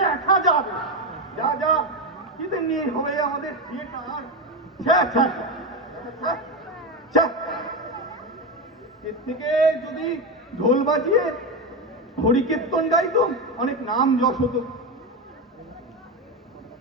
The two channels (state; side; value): normal; both; correlation 0.13